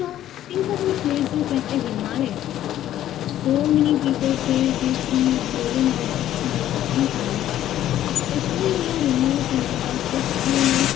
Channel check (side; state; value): right; quieter; 12.3 dB